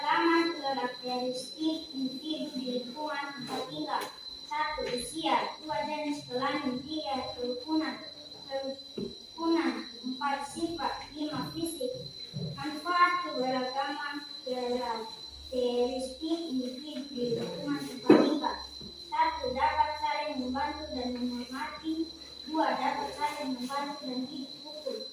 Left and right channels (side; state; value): both; identical; correlation 1.00